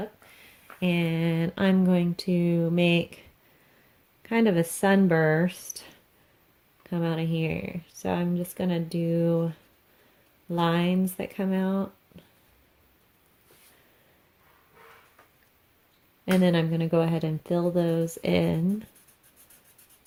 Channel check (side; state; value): both; identical; correlation 1.00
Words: And I'm going to make kind of a sunburst come out of here. So I'm just gonna do lines that come out. And then I'm going to go ahead and fill those in